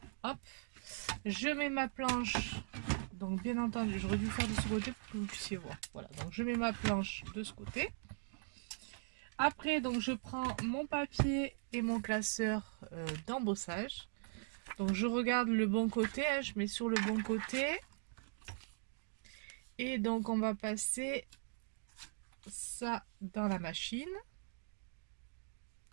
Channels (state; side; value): silent; left; digital silence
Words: Hop, je mets ma planche. Donc, bien entendu, j'aurais dû faire de ce côté pour que vous puissiez voir. Voilà, donc je mets ma planche de ce côté. Après, donc je prends mon papier et mon classeur d'embossage. Donc je regarde le bon côté, hein, je mets sur le bon côté. Et donc on va passer ça dans la machine.